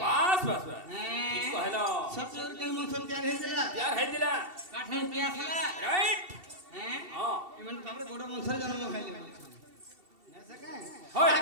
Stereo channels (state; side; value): late; left; 2.7 ms